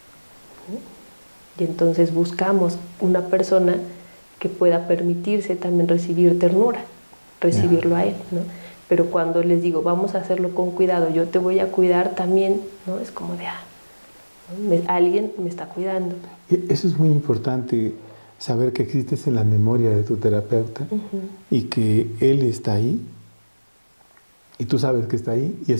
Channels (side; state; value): both; inverted; correlation -1.00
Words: Y entonces buscamos una persona que pueda permitirse también recibir ternura, recibirlo a él, ¿no? Pero cuando les digo, vamos a hacerlo con cuidado, yo te voy a cuidar también, ¿no? Es como de, alguien me está cuidando. Eso es muy importante, saber que existes en la memoria de tu terapeuta y que él está ahí y tú sabes que está ahí y